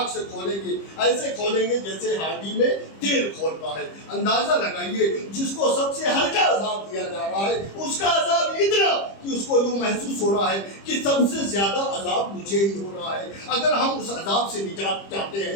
سے کھولیں گے، ایسے کھولیں گے جیسے ہانڈی میں تیل کھولتا ہے۔ اندازہ لگائیے، جس کو سب سے ہلکا عذاب دیا جا رہا ہے، اس کا عذاب اتنا کہ اس کو یوں محسوس ہو رہا ہے کہ سب سے زیادہ عذاب مجھے ہی ہو رہا ہے۔ اگر ہم اس عذاب سے نجات چاہتے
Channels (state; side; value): late; right; 25 ms